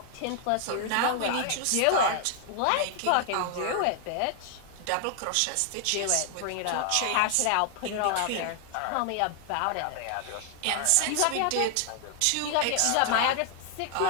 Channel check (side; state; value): both; different; correlation 0.00